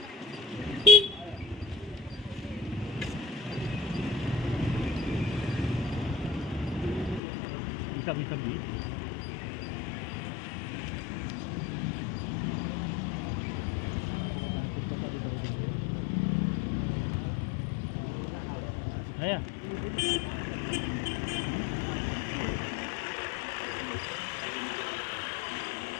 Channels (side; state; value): right; drops out; at 7.2 s